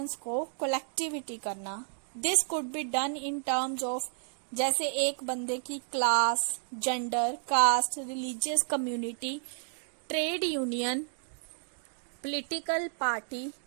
को कलेक्टिविटी करना। This could be done in terms of, जैसे एक बंदे की class, gender, caste, religious community, trade union, political party,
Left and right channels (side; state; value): left; silent; digital silence